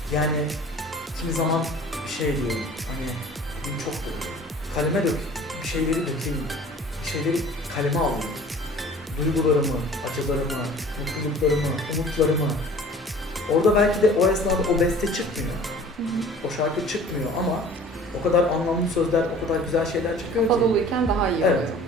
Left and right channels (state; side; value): normal; both; correlation 0.47